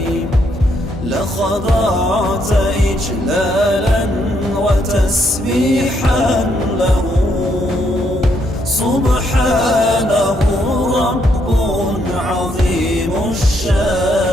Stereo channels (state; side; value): normal; both; correlation 0.74